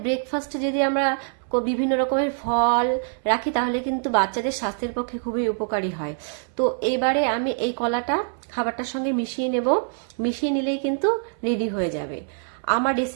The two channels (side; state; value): left; silent; 59 dB below the other